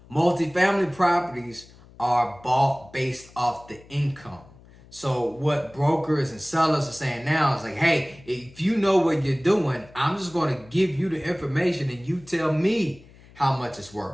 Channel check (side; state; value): left; noise; hum, 24 dB below the sound